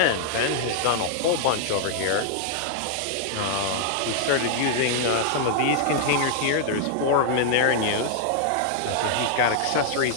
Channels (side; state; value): both; different; correlation -0.01